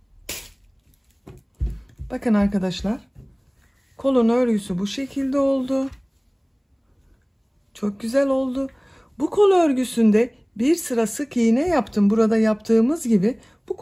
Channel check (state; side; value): identical; both; correlation 1.00